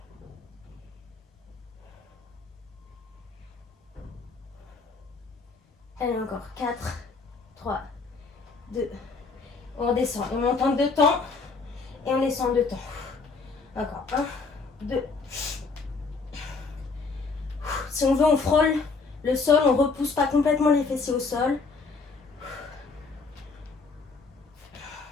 Allez, encore. 4, 3, 2. On redescend. On monte en 2 temps. Et on descend en 2 temps. Encore. 1, 2. Si on veut, on frôle le sol. On ne repousse pas complètement les fessiers au sol.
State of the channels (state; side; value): quieter; right; 4.3 dB